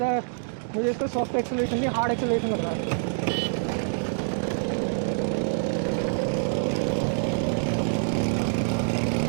मुझे इसका सॉफ्ट एक्सेलरेशन नहीं हार्ड एक्सेलरेशन लग रहा है।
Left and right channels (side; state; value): left; silent; digital silence